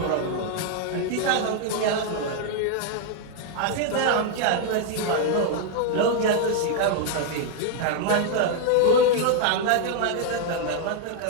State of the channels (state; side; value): different; both; correlation 0.00